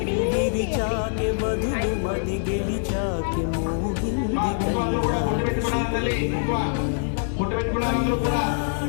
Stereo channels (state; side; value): silent; right; 62 dB below the other